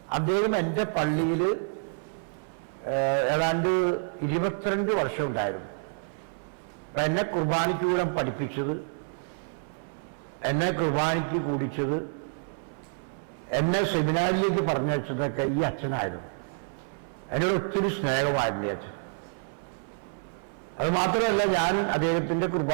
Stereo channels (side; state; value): left; silent; 59 dB below the other